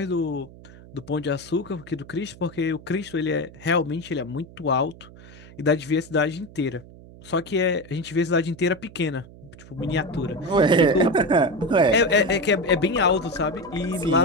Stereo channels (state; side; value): noise; right; hum, 20 dB below the sound